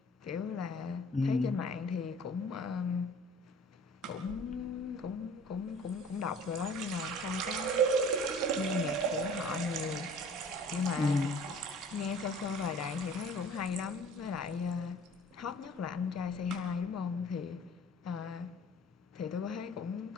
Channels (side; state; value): both; normal; correlation 0.48